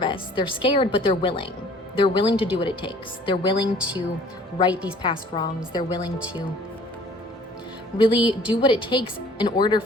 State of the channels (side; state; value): both; normal; correlation 0.53